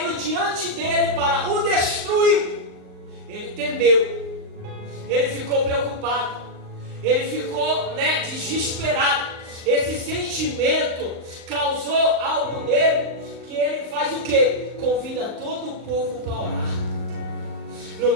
diante dele para o destruir. Ele temeu, ele ficou preocupado, ele ficou desesperado. Esse sentimento causou algo nele, que ele faz o quê? Convida todo o povo para orar. No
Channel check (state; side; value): late; left; 38 ms